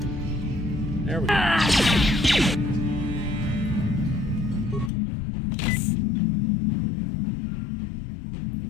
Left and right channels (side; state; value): right; drops out; at 4.9 s